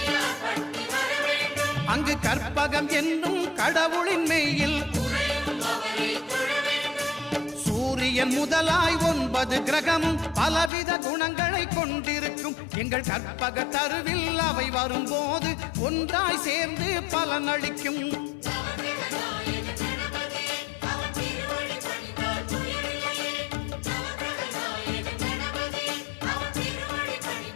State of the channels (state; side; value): drops out; right; at 10.7 s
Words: அங்கு கற்பகம் என்னும் கடவுளின் மெய்யில் சூரியன் முதலாய் 9 கிரகமும் பலவித குணங்களை கொண்டிருக்கும். எங்கள் கற்பக தருவில் அவை வரும்போது ஒன்றாய் சேர்ந்து பலனளிக்கும்.